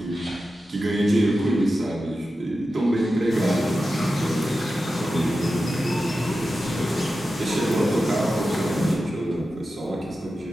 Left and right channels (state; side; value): normal; both; correlation 0.92